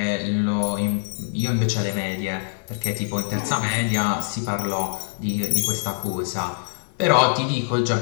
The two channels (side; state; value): right; silent; 63 dB below the other